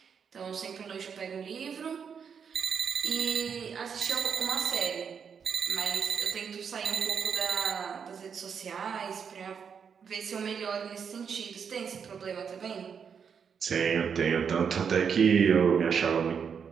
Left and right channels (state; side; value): quieter; left; 6.8 dB